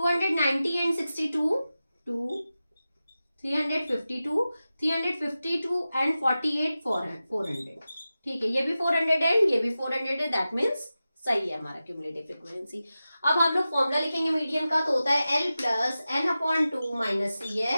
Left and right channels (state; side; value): inverted; both; correlation -0.94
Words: एंड 62 352 एंड 48 400। ठीक है, ये भी 400 है, ये भी 400 है, दैट मीन्स सही है हमारा क्यूमुलेटिव फ्रीक्वेंसी। अब हम लोग फॉर्मूला लिखेंगे मीडियन का, तो होता है L plus n/2 minus